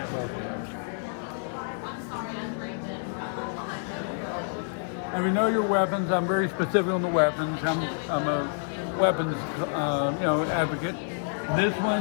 buffalo. And we know your weapons. I'm very specific on the weapons. I'm a weapons advocate. This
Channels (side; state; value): right; silent; digital silence